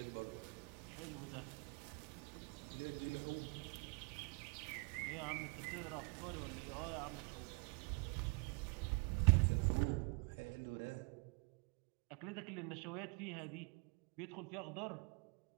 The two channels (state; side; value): quieter; left; 32.4 dB